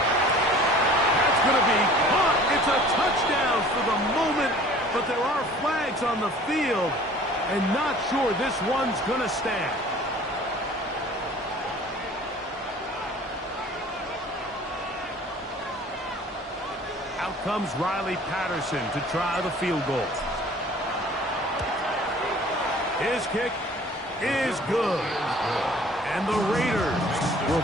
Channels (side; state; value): both; normal; correlation 0.49